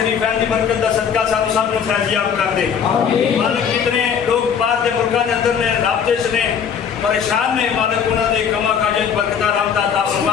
دی برکت دا صدقہ ساتھ ساتھ میں فیضیاب کر دے۔ مالک جتنے لوگ بعد دے ملکان دے اندر نے رابطے سے پریشان نے، مالک انہاں دے کما کاجت برکتہ رحمت عطا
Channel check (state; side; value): quieter; right; 7.4 dB